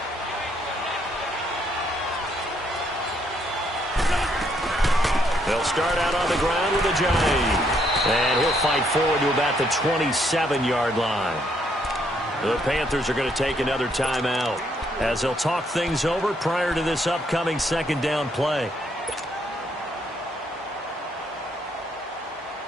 They'll start out on the ground with a Giant. And he'll fight forward to about the 27-yard line. The Panthers are going to take another timeout as they'll talk things over prior to this upcoming 2nd down play.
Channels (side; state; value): both; normal; correlation 0.72